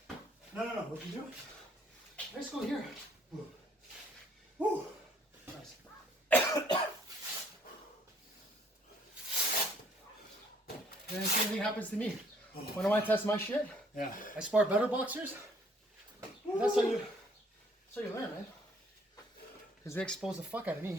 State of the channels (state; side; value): normal; both; correlation 0.63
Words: No. What you doing? Let's go here. Woo. Woo. Nice. And the same thing happens to me. When I want to test my shit, Yeah. I spar better boxers. And that's how you learn, man. Because they expose the fuck out of